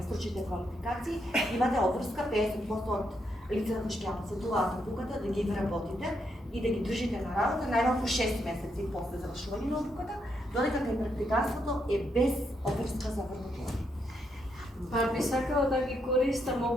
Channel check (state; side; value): normal; both; correlation 0.79